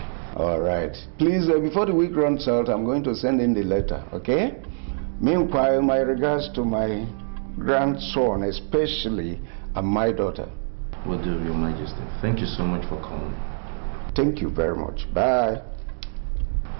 All right. Please, before the week runs out, I'm going to send in the letter, okay? Meanwhile, my regards to my grandson, especially, and my daughter. Will do, Your Majesty. Thank you so much for calling. Thank you very much. Bye.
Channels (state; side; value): silent; left; digital silence